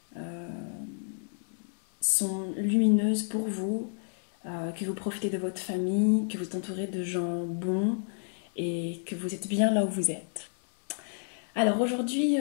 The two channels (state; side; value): silent; right; 58 dB below the other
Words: sont lumineuses pour vous, que vous profitez de votre famille, que vous êtes entouré de gens bons et que vous êtes bien là où vous êtes. Alors aujourd'hui,